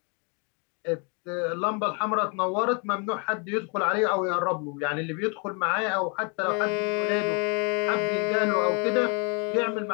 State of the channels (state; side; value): quieter; right; 34.5 dB